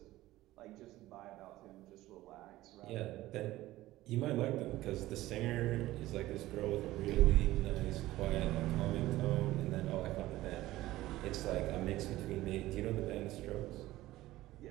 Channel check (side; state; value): left; quieter; 16.5 dB